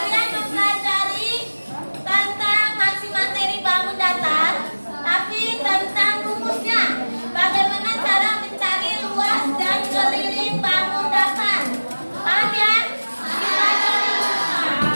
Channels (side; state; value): both; inverted; correlation -1.00